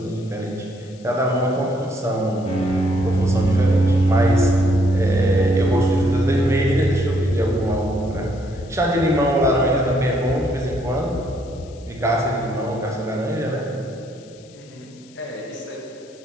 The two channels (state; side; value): noise; left; hiss, 26 dB below the sound